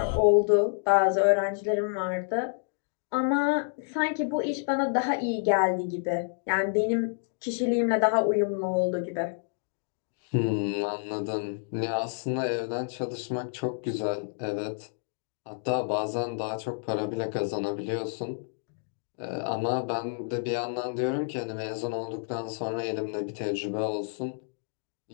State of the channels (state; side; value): silent; right; digital silence